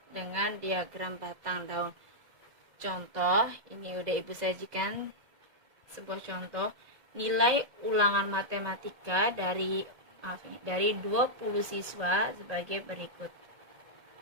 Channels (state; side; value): late; left; 1.7 ms